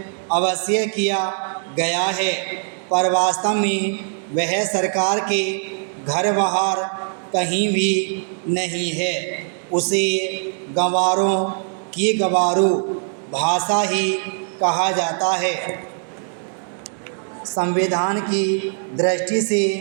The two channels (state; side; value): silent; left; digital silence